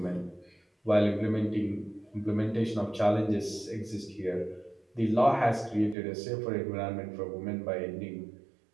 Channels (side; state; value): left; drops out; at 6.0 s